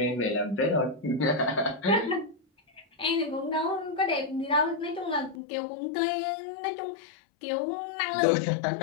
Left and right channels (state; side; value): drops out; right; at 5.4 s